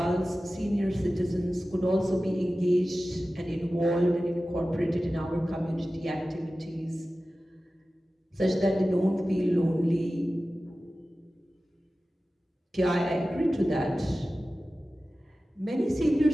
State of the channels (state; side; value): normal; both; correlation 0.95